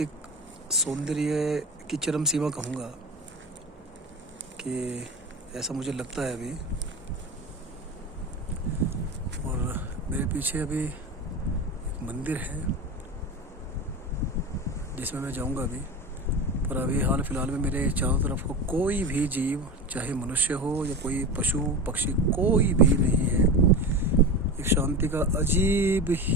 सौंदर्य की चरम सीमा कहूँगा कि ऐसा मुझे लगता है अभी। और मेरे पीछे अभी एक मंदिर है जिसमें मैं जाऊंगा अभी। पर अभी हाल फिलहाल में मेरे चारों तरफ को कोई भी जीव, चाहे मनुष्य हो या कोई पशु पक्षी, कोई भी नहीं है। एक शांति का अजीब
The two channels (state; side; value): normal; both; correlation 0.25